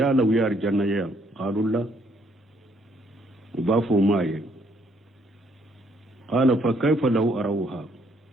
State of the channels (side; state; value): both; normal; correlation 0.68